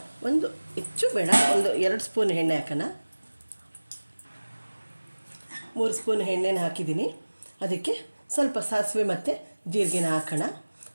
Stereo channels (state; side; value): inverted; both; correlation -1.00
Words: ಒಂದು ಹೆಚ್ಚು ಬೇಡ, ಒಂದು 2 ಸ್ಪೂನ್ ಎಣ್ಣೆ ಹಾಕೋಣ. 3 ಸ್ಪೂನ್ ಎಣ್ಣೆನ ಹಾಕಿದ್ದೀನಿ. ಅದಕ್ಕೆ ಸ್ವಲ್ಪ ಸಾಸಿವೆ ಮತ್ತು ಜೀರಿಗೆನ ಹಾಕೋಣ.